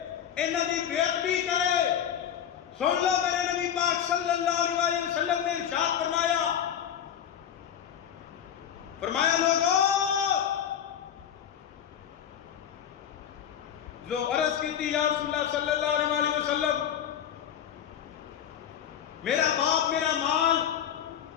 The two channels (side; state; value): right; quieter; 9.4 dB